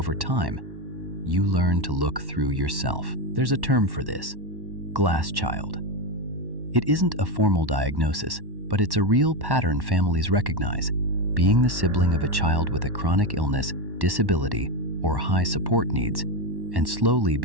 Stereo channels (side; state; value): left; late; 1.1 ms